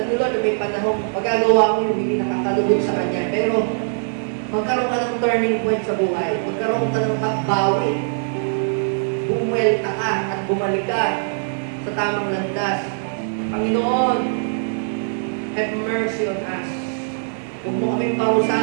ni Lord na may panahon magagawa mo yung hindi nakakalugod sa Kanya. Pero magkaroon ka ng turning point sa buhay. Magkaroon ka ng pagbawi. Bumuelta ka at bumalik ka sa tamang landas. Panginoon, have mercy on us. Huwag mo kaming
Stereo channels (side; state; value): left; silent; digital silence